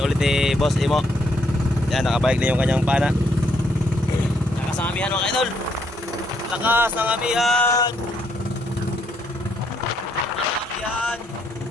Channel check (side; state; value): both; normal; correlation 0.72